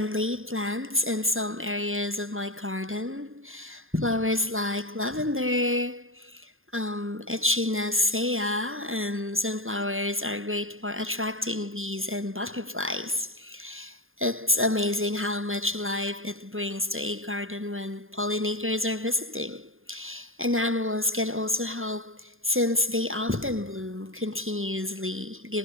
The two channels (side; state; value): left; late; 0.60 ms